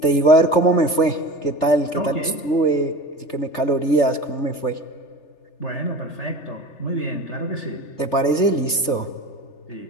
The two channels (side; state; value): right; late; 3.4 ms